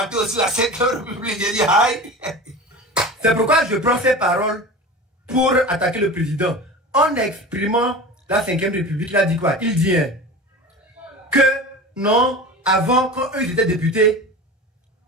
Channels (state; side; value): normal; both; correlation 0.32